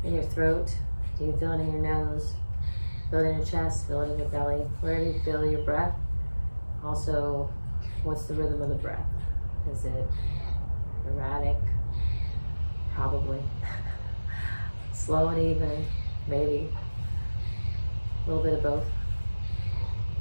in your throat? Do you feel it in your nose? Feel it in your chest? Feel it in your belly? Where do you feel your breath? Also, what's the rhythm of the breath? Is it erratic? Probably. Slow and even? Maybe. A little bit of both.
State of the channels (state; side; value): inverted; both; correlation -1.00